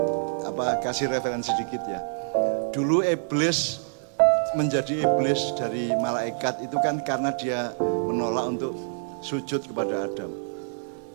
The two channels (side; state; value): left; silent; digital silence